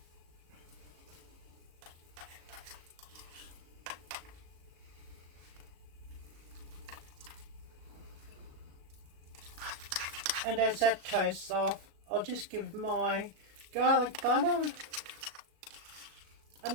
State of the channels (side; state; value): left; late; 37 ms